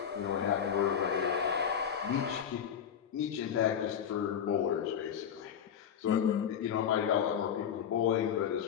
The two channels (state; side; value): quieter; right; 8.4 dB